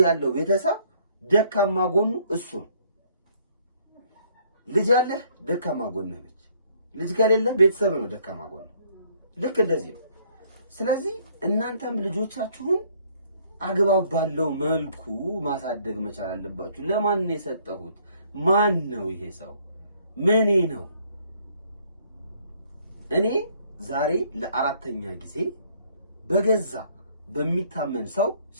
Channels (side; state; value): both; inverted; correlation -0.63